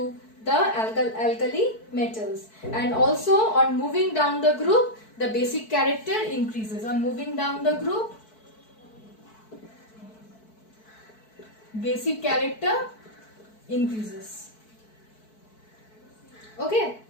the alkali metals. And also on moving down the group, the basic character increases. On moving down the group, basic character increases. Okay.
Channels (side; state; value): right; late; 4.6 ms